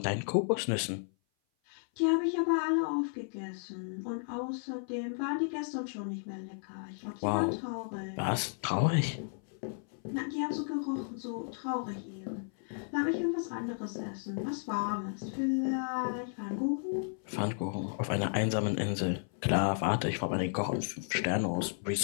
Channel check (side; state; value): right; silent; 55 dB below the other